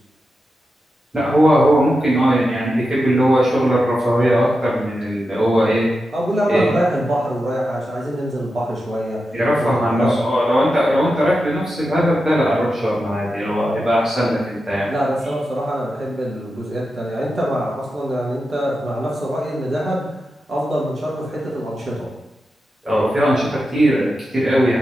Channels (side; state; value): both; normal; correlation 0.90